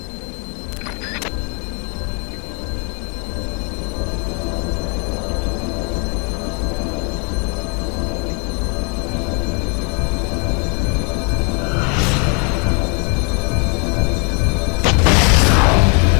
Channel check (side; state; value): right; quieter; 34.1 dB